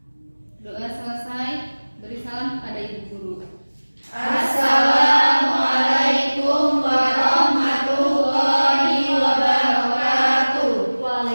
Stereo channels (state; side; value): inverted; both; correlation -1.00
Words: Doa selesai, beri salam kepada Ibu Guru. Assalamualaikum warahmatullahi wabarakatuh.